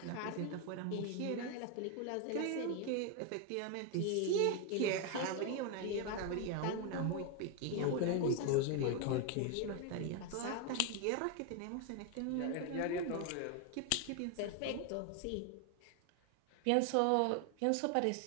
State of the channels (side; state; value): both; different; correlation 0.01